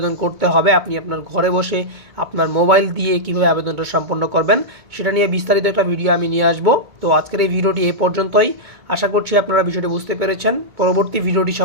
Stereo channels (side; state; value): left; late; 2.2 ms